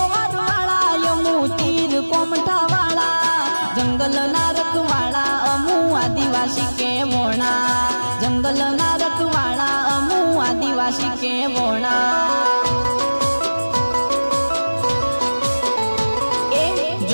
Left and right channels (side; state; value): both; inverted; correlation -1.00